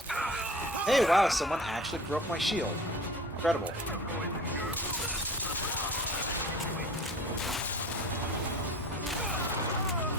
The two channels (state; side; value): normal; both; correlation 0.41